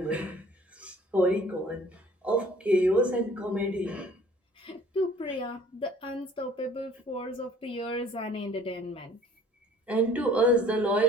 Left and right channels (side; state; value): both; normal; correlation 0.53